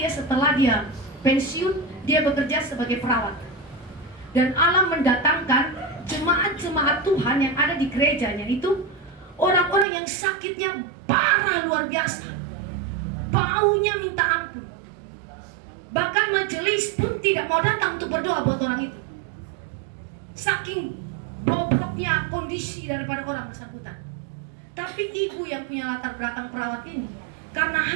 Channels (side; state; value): left; drops out; at 9.9 s